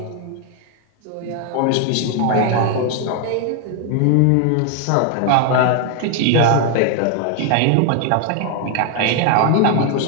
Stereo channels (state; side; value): different; both; correlation 0.00